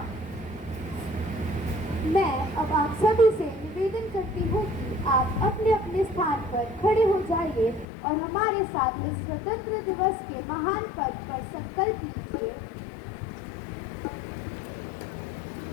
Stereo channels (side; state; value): right; drops out; at 7.9 s